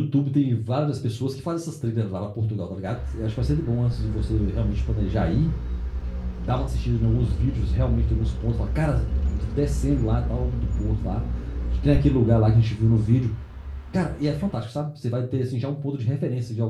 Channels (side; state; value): both; identical; correlation 1.00